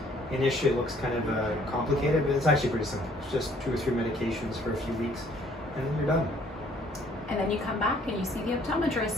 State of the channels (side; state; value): both; normal; correlation 0.60